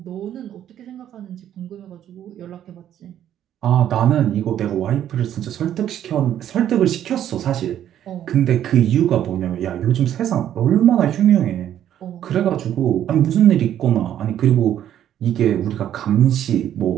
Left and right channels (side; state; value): left; quieter; 10.8 dB